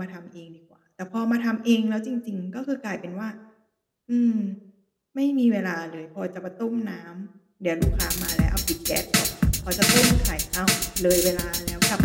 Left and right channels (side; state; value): both; identical; correlation 1.00